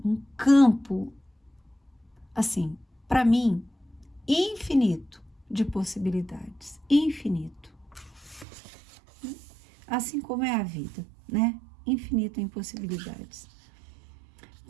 um campo, assim, para mim, infinito de possibilidades, infinito. Assim como é a vida, né? Infinito em possibilidades.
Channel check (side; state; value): left; drops out; at 8.5 s